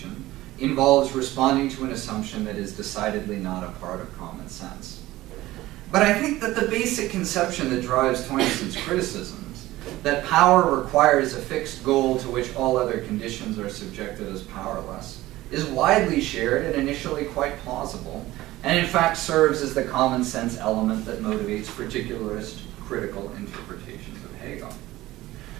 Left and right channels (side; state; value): left; quieter; 17.0 dB